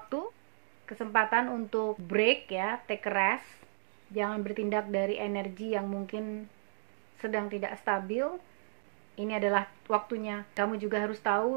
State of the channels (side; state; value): left; silent; digital silence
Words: kesempatan untuk break ya, take a rest. Jangan bertindak dari energi yang mungkin sedang tidak stabil. Ini adalah waktunya. Kamu juga harus